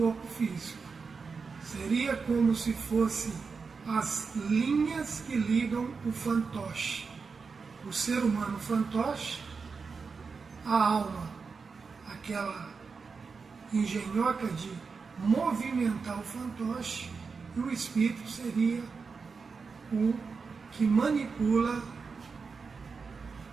físico. Seria como se fosse as linhas que ligam o fantoche. O ser humano fantoche, a alma, aquela engenhoca de movimentar o fantoche, e o espírito seria o que manipula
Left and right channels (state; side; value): quieter; left; 5.0 dB